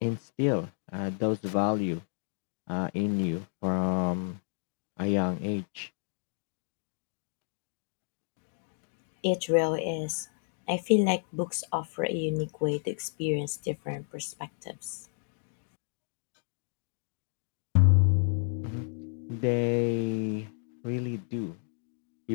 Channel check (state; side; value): silent; right; digital silence